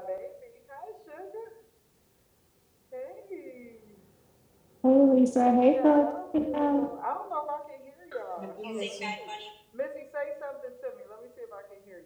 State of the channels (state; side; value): identical; both; correlation 1.00